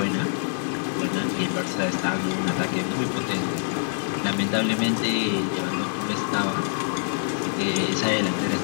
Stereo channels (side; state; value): right; silent; 62 dB below the other